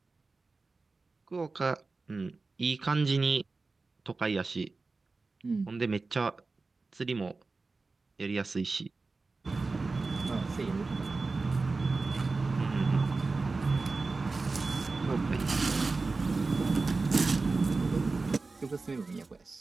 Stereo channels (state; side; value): quieter; left; 3.8 dB